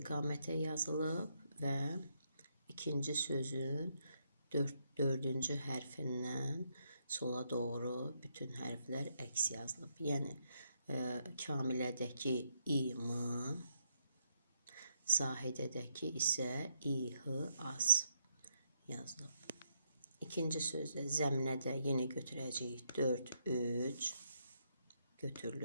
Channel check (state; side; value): inverted; both; correlation -0.76